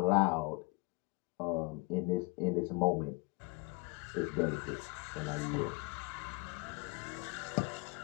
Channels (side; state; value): right; quieter; 27.7 dB